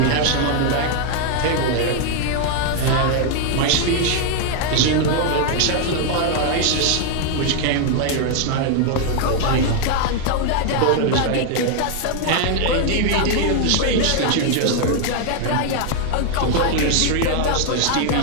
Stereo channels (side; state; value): both; different; correlation 0.00